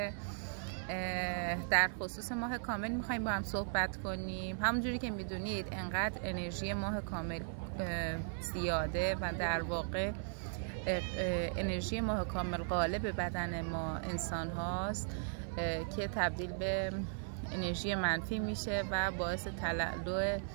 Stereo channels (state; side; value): silent; left; 53 dB below the other